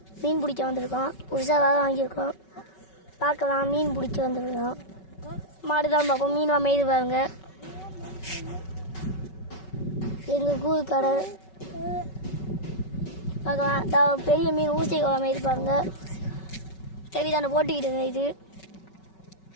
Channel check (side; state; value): right; late; 5.3 ms